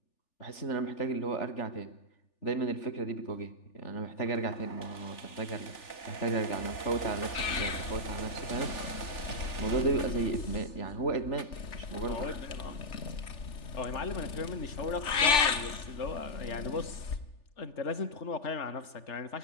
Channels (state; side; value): late; right; 3.4 ms